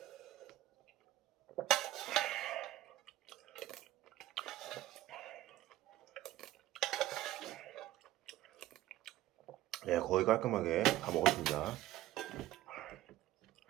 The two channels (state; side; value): quieter; left; 14.9 dB